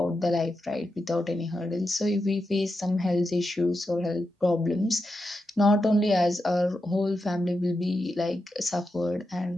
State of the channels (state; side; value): normal; both; correlation 0.88